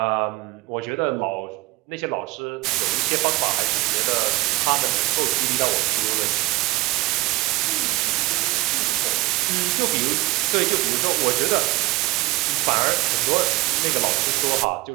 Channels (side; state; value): left; quieter; 20.7 dB